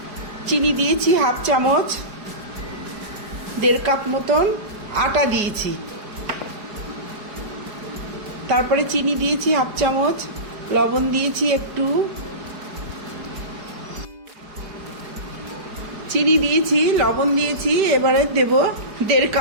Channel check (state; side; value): late; left; 4.8 ms